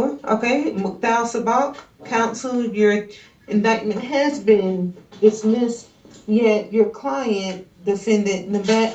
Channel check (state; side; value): identical; both; correlation 1.00